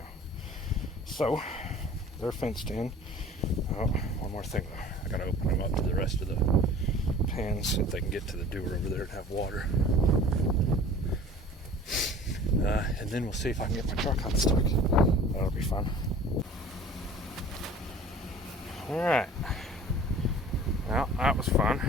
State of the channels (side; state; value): both; normal; correlation 0.45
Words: So they're fenced in. Oh, one more thing though. I gotta open them up to the rest of the pens so they can get to the dewar over there and have water. And then we'll see if I can get my truck unstuck. That'll be fun. Alright. Well, that was